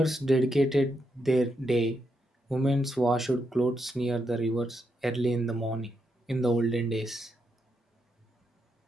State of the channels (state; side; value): normal; both; correlation 0.81